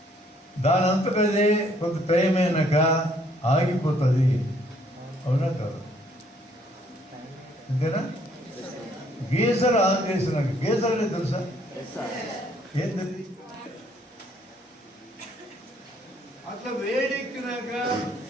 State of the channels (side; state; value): both; normal; correlation 0.65